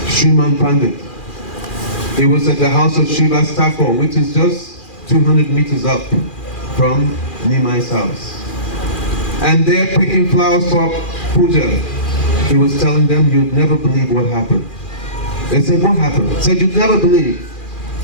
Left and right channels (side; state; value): right; late; 2.4 ms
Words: Sriman Pandit, he was at the house of Srivas Thakur, which is just 200 meters up from Nimai's house. And they're picking flowers for puja. He was telling them, you'd never believe what happened. They said, what happened? He said, you'd never believe.